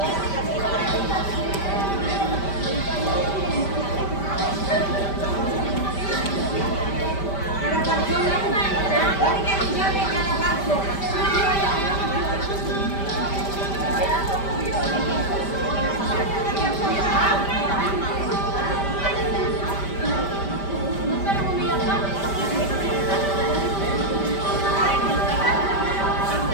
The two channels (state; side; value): late; right; 5.1 ms